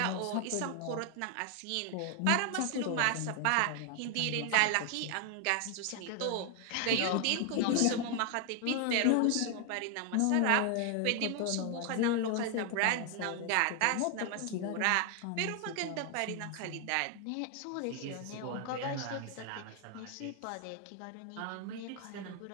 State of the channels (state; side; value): different; both; correlation 0.00